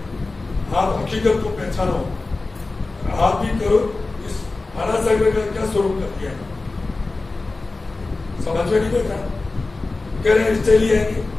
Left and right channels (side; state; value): right; quieter; 3.4 dB